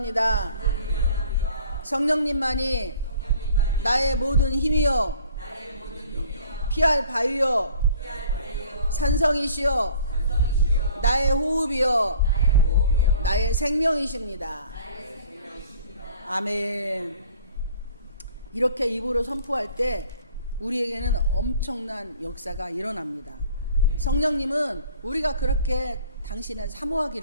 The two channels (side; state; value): both; inverted; correlation -0.52